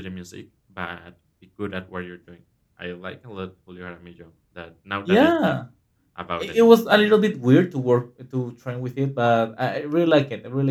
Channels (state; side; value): identical; both; correlation 1.00